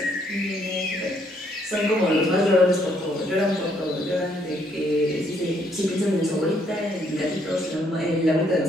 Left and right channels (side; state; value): both; normal; correlation 0.70